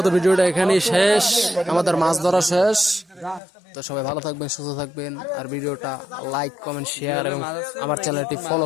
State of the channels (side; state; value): right; drops out; at 3.4 s